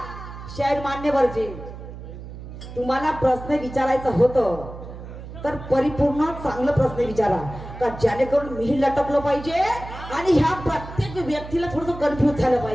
शायर मान्यवरजी तुम्हाला प्रश्न विचारायचा होतं तर परिपूर्ण चांगलं प्रश्न विचारा, का जेणेकरून मी लटकलो पाहिजे आणि ह्या प्रत्येक व्यक्तीला थोडस कन्फ्युज झालं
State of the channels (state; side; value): noise; right; hum, 12 dB below the sound